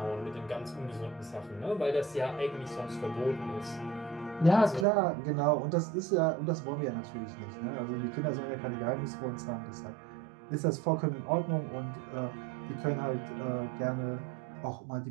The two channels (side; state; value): left; drops out; at 4.9 s